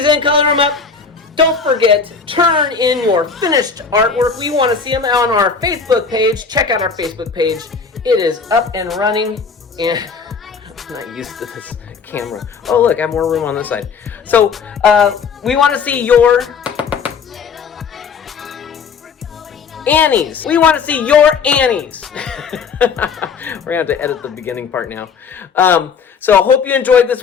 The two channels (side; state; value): right; quieter; 5.6 dB